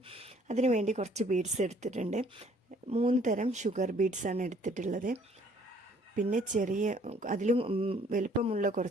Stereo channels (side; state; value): both; normal; correlation 0.60